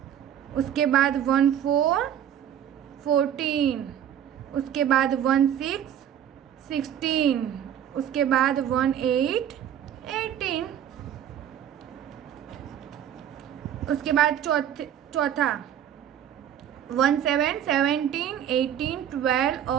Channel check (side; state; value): left; quieter; 10.0 dB